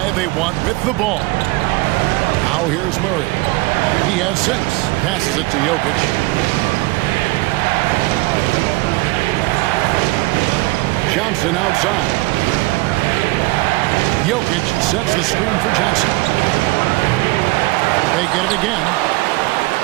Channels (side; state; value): left; quieter; 22.3 dB